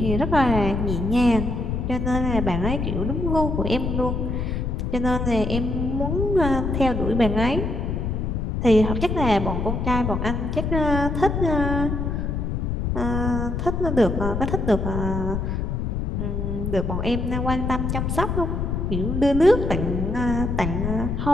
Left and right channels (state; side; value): noise; left; rumble, 1 dB below the sound